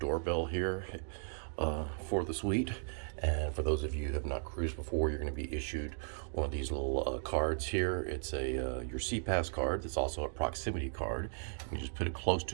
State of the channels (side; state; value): left; silent; digital silence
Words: here for the suite. And for those of you who have not cruised before, you're going to be issued one of these little cards here. It's a your SeaPass card. It's also a proximity card. You just put it close